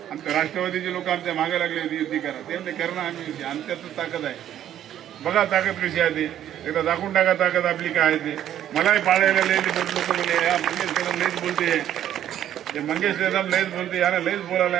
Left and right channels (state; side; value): quieter; left; 11.1 dB